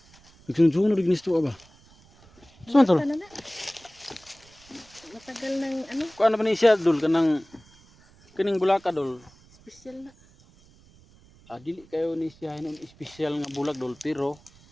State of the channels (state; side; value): noise; right; rumble, 27 dB below the sound